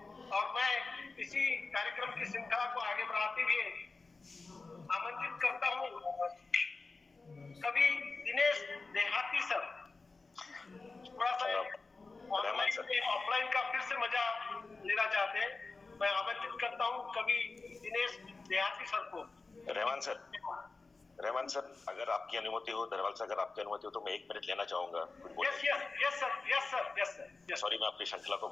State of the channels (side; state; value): right; quieter; 3.9 dB